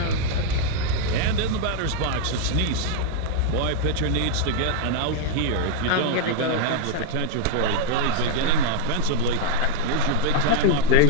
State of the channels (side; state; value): both; different; correlation 0.00